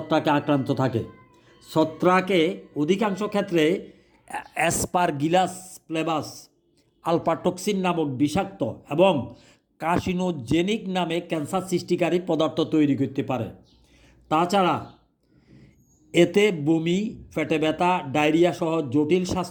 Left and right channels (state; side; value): identical; both; correlation 1.00